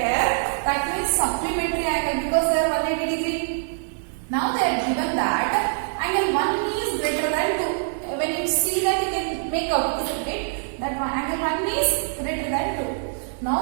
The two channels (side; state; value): left; silent; digital silence